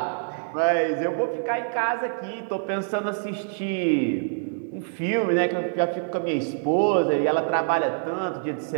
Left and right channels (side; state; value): left; silent; digital silence